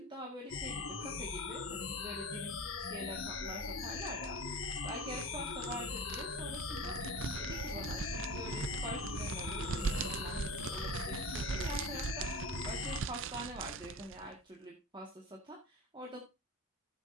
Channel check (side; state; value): both; normal; correlation 0.32